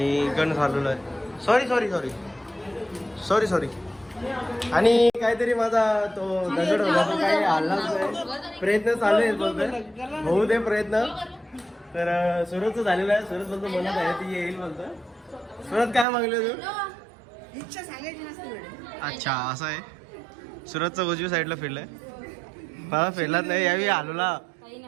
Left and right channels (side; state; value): left; drops out; at 16.1 s